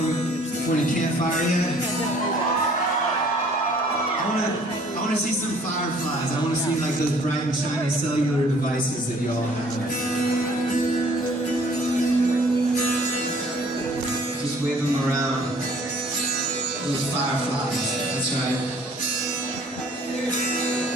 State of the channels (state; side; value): normal; both; correlation 0.56